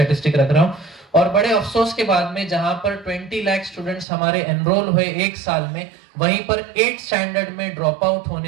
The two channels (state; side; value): drops out; left; at 4.0 s